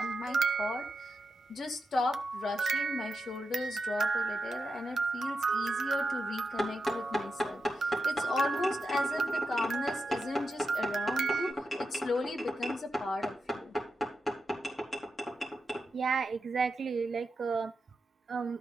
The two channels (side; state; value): both; normal; correlation 0.88